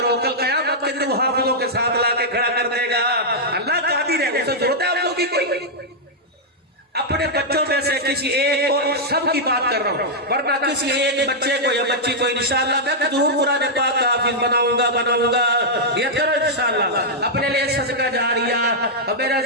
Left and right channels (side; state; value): both; normal; correlation -0.06